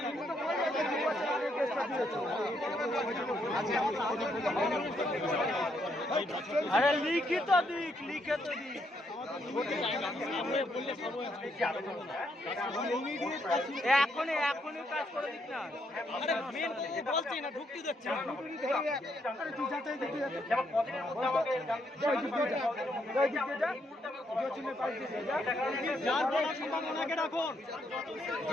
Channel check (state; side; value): normal; both; correlation 0.75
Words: আরে লিখিত দিক, লিখিত দিক। এখনই কাজ করে দিক না। বলছি না, ঢুকতে দিচ্ছে না। যার বলার সম্ভাবনাকে রাখুন,